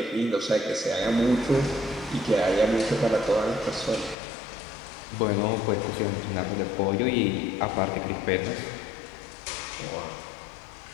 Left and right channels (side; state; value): right; drops out; at 4.2 s